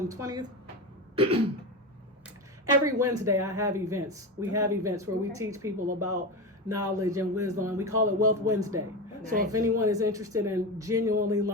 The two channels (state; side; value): normal; both; correlation 0.20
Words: the 20th. Every Wednesday I have events. We have events where we Okay. teach people about knowledge and wisdom, and we call it Wealth Wednesday. So if Nice. anyone is interested in genuinely